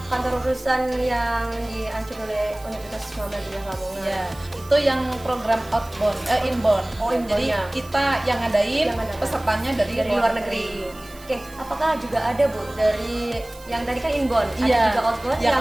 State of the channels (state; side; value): noise; right; hiss, 22 dB below the sound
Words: kantor urusan yang diancur oleh Universitas Muhammadiyah Lamongan. Ya, itu yang program inbound. Oh, inbound, Jadi ya. kita yang ngadain, Yang ngadain. pesertanya dari Luar negeri. Oke, apakah juga ada Bu dari yang tadi kan inbound, ada Iya, juga outbound yang